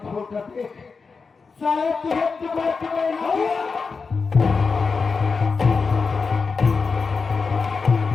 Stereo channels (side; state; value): right; quieter; 4.8 dB